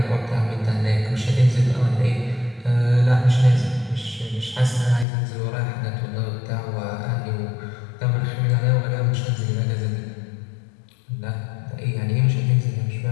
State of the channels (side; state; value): right; drops out; at 5.1 s